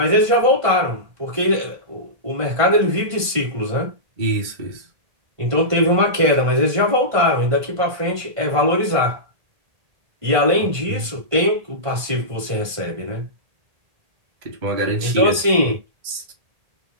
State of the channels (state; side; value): late; left; 1.5 ms